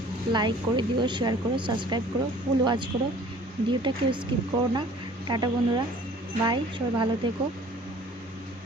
লাইক করে দিও, শেয়ার করো, সাবস্ক্রাইব করো, ফুল ওয়াচ করো, ভিডিওটা কেউ স্কিপ করো না। টাটা বন্ধুরা, বাই, সবাই ভালো থেকো।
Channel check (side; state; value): both; normal; correlation 0.51